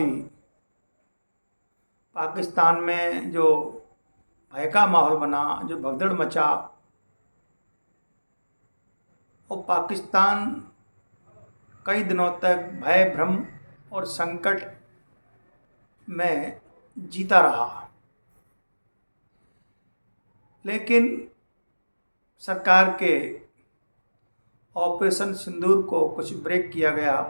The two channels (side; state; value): both; inverted; correlation -1.00